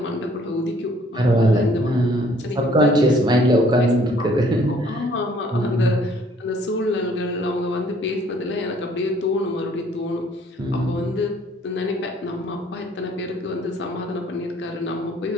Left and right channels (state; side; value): normal; both; correlation 0.60